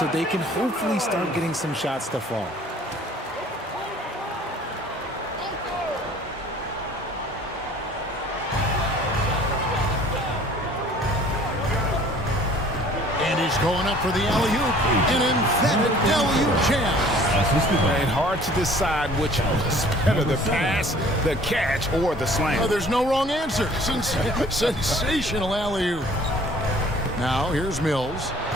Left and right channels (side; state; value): both; normal; correlation 0.52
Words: they can hopefully start getting some shots to fall. Going up for the alley-oop. An emphatic alley-oop jam. And hard to decide which was better, the pass, the catch, or the slam. Oh, there's no wrong answer. Sensational alley-oop. Now, here's Mills.